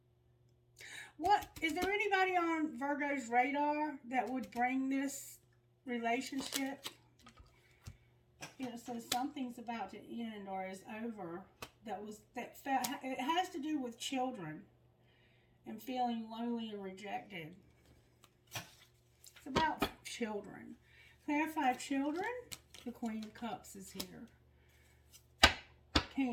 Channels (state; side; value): identical; both; correlation 1.00